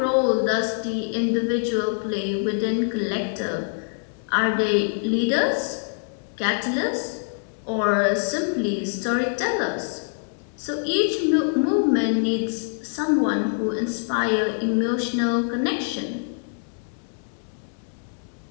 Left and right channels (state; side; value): silent; right; digital silence